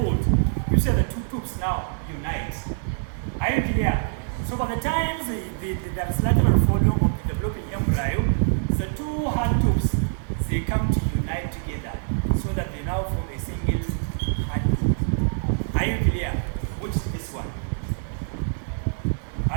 you see the 2 tubes now unite. Are you clear? So by the time there's lateral folding of the developing embryo, the 2 heart tubes, they come to unite together so that they now form a single heart tube. Are you clear? Which is this one?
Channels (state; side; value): silent; left; digital silence